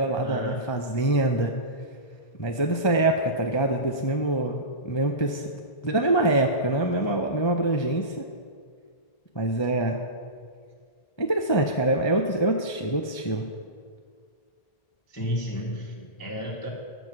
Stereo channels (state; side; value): late; right; 1.3 ms